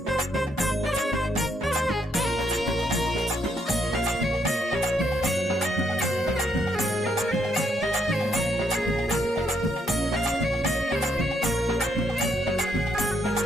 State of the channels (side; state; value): both; normal; correlation 0.74